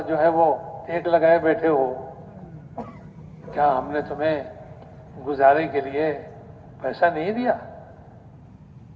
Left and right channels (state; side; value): identical; both; correlation 1.00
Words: جو ہے وہ ٹیک لگائے بیٹھے ہو، کیا ہم نے تمہیں گزارے کے لیے پیسہ نہیں دیا؟